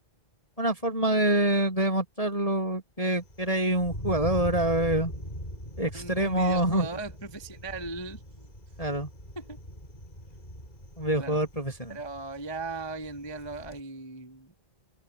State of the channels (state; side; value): late; right; 1.7 ms